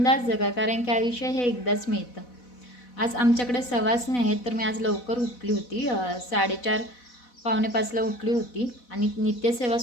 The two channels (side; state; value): right; late; 4.1 ms